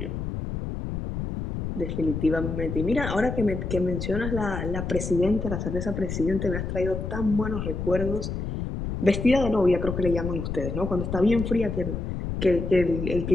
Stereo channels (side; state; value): left; noise; rumble, 4 dB below the sound